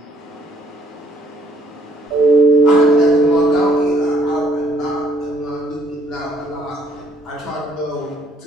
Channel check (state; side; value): normal; both; correlation 0.64